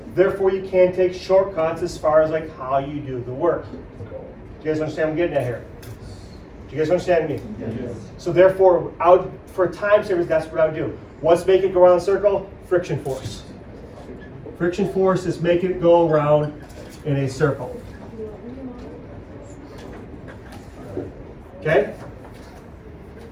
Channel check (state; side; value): identical; both; correlation 1.00